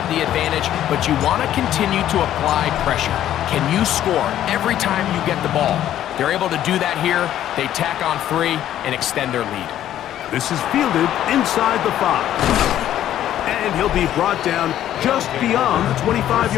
the advantage, but you want to continue to apply pressure. Can you score every time you get the ball? They're able to do that here. They tack on 3 and extend their lead. This is fielded inside the 5. And he'll be brought down just beyond the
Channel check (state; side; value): quieter; right; 11.8 dB